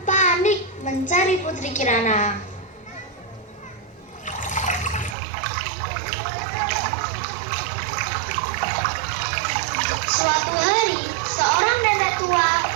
panik mencari Putri Kirana. Suatu hari, seorang nenek tua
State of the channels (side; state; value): left; drops out; at 5.2 s